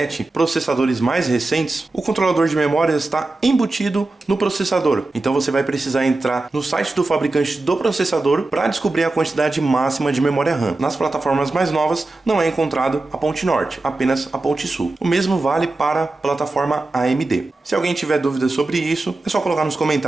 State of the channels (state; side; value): quieter; left; 3.1 dB